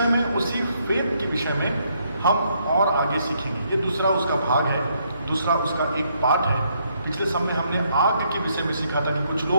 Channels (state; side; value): inverted; both; correlation -0.72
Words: में, उसी फेथ के विषय में हम और आगे सीखेंगे। ये दूसरा उसका भाग है, दूसरा उसका एक पार्ट है। पिछले समय हमने आग के विषय में सीखा था कि कुछ